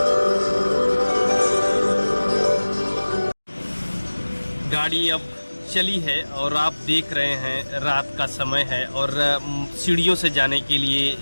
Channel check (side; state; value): both; inverted; correlation -1.00